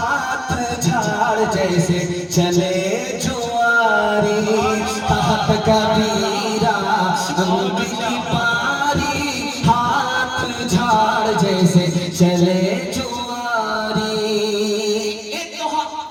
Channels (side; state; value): both; identical; correlation 1.00